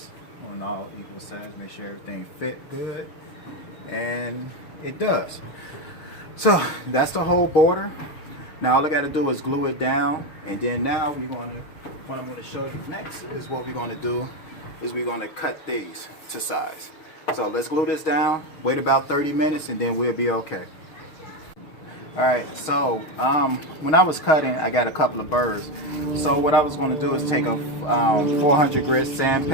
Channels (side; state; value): right; late; 6.4 ms